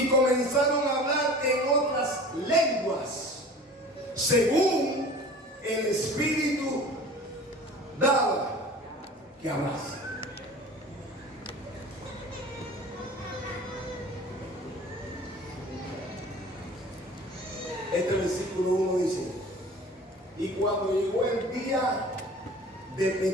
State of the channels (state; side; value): normal; both; correlation 0.42